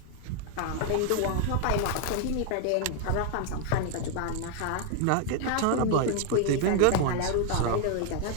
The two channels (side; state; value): both; different; correlation 0.00